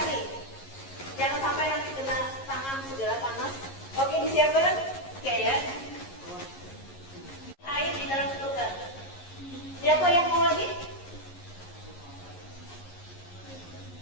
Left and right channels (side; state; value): right; late; 11 ms